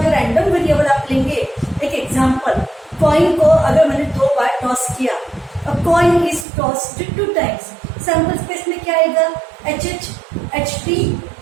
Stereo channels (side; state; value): left; drops out; at 6.5 s